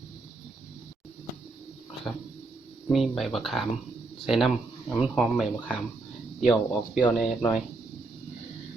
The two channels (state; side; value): quieter; left; 3.5 dB